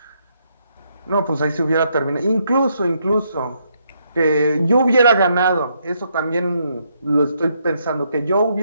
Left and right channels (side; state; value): both; inverted; correlation -0.75